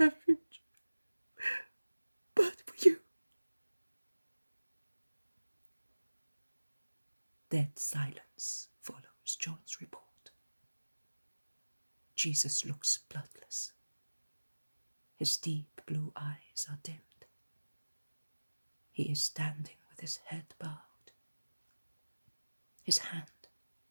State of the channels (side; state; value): both; inverted; correlation -1.00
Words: but for you. Dead silence follows John's report. Jesus looks bloodless. His deep blue eyes are dimmed. He is standing with his head bowed, his hand